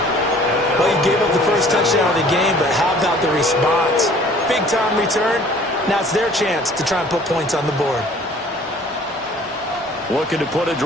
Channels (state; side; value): normal; both; correlation 0.53